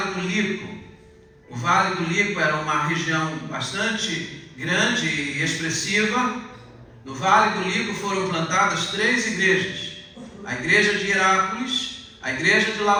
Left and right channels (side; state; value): both; identical; correlation 1.00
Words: do Lico. O Vale do Lico era uma região bastante grande e expressiva. No Vale do Lico foram plantadas 3 igrejas. A igreja de Hierápolis, a igreja de